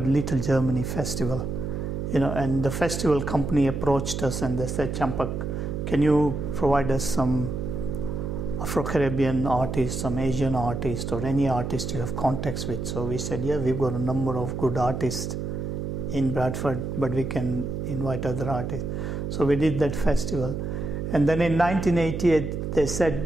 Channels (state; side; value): noise; right; hum, 4 dB below the sound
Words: Little Germany Festival, and the festival company approached us and they said, Champak, can you provide us some Afro-Caribbean artists, some Asian artists, or any artist you have contacts with? So we said, yeah, we've got a number of good artists in Bradford, but we can invite other artists. So we did that festival. And then in 1988, they said